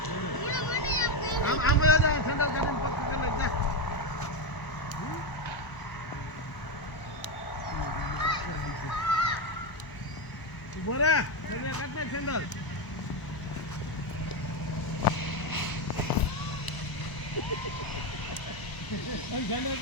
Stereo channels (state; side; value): late; right; 1.0 ms